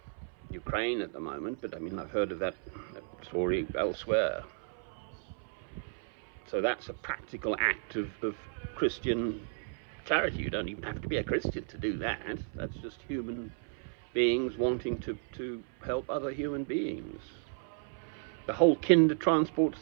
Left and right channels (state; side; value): silent; left; 55 dB below the other